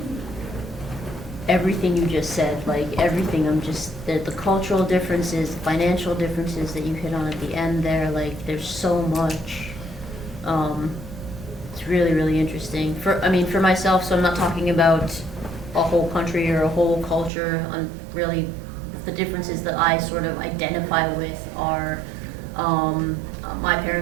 everything you just said, like everything. I'm just, the cultural differences, financial differences that you hit on at the end there, like there's so much. It's It's really, really interesting. For myself, so I'm not talking about a whole country or a whole culture. On really, the differences that I sort of identify with are, my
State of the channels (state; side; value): drops out; left; at 17.3 s